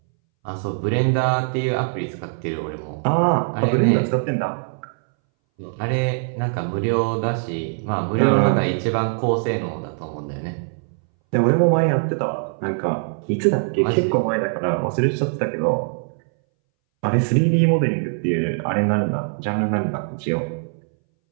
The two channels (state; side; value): silent; left; 62 dB below the other